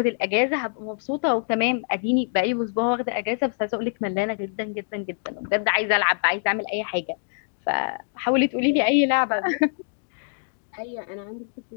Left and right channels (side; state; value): right; silent; digital silence